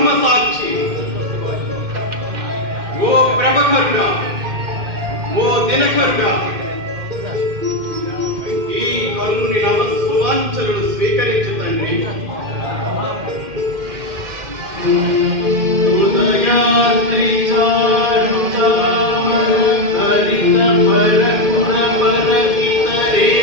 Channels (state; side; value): late; left; 2.1 ms